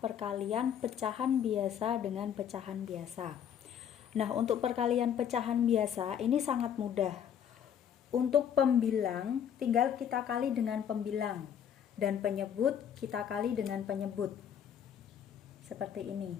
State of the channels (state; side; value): quieter; right; 8.9 dB